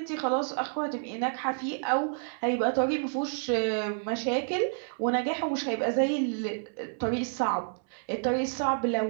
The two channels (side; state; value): left; silent; 58 dB below the other